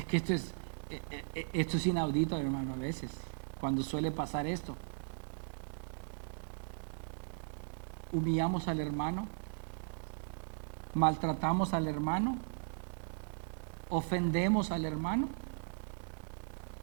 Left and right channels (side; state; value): left; silent; digital silence